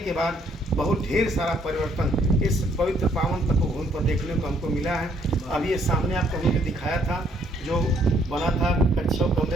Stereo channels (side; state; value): both; normal; correlation 0.67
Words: बाद बहुत ढेर सारा परिवर्तन इस पवित्र पावन तपोभूमि पर देखने को हमको मिला है। अभी ये सामने आपको हमने दिखाया था जो बना था कच्छों